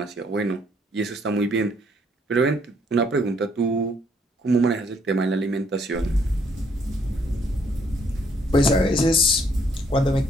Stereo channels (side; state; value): both; normal; correlation 0.67